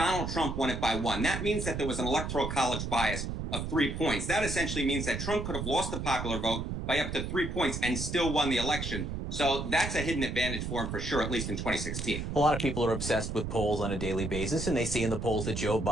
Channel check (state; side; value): noise; right; rumble, 4 dB below the sound